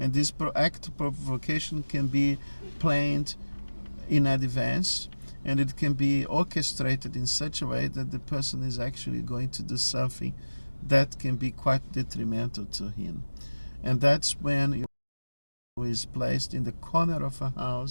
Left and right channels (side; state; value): both; inverted; correlation -1.00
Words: this act of provocation can be planned in advance, and it can be orchestrated in such a way that the person is actually going to do something that can be quite detrimental to him. And that's when he is placed in the corner of a